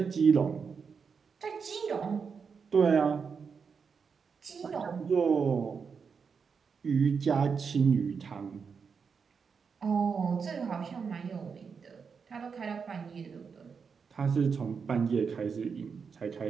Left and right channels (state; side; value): quieter; left; 5.8 dB